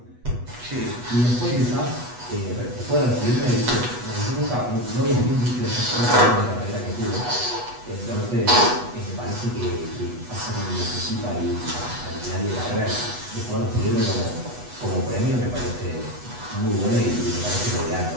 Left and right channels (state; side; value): late; left; 8.2 ms